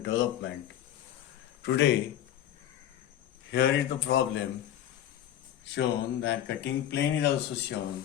Today, here is the problem shown that cutting plane is also shown.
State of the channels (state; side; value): quieter; right; 11.3 dB